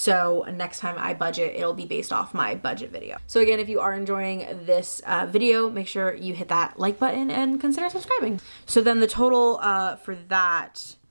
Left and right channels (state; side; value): inverted; both; correlation -1.00